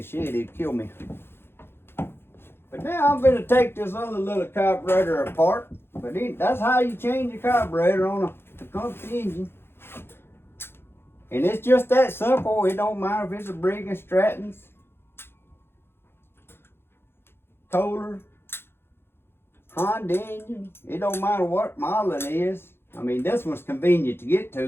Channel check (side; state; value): right; late; 0.11 ms